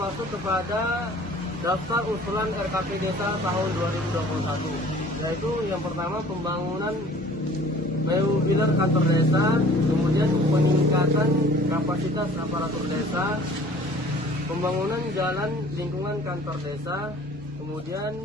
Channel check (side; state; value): both; normal; correlation 0.50